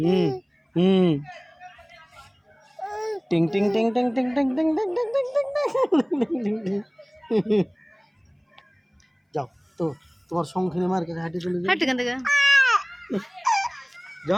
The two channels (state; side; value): identical; both; correlation 1.00